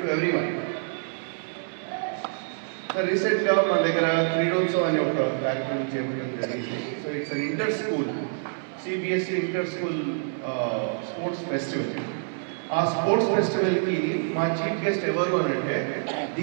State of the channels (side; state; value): left; silent; 60 dB below the other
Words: to everyone. So recently మన దగ్గర క్రీడోత్సవం అనే ఒక కార్యక్రమం చేపట్టడం జరిగింది. So it's an inter school CBSE inter school sports festival. ఆ స్పోర్ట్స్ ఫెస్టివల్కి మా చీఫ్ గెస్ట్ ఎవరు అని అంటే